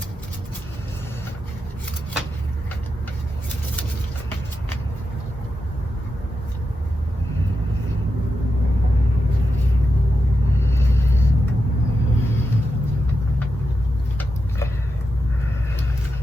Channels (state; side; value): normal; both; correlation 0.87